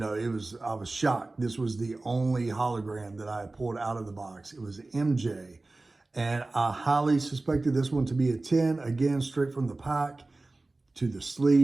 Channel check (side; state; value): left; quieter; 3.1 dB